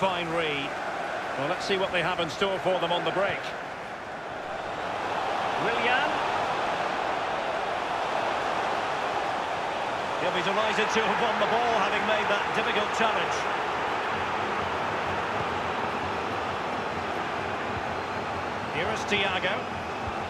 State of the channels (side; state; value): both; identical; correlation 1.00